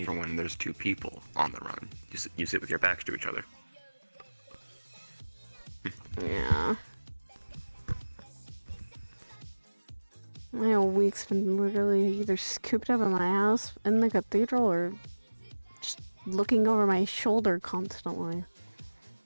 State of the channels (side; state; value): both; inverted; correlation -1.00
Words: for when there's two people on the run. You sit with your backs to each other. Yeah. My whole week's been literally either cooped up in my house in the cathedral or just looking over my shoulder constantly.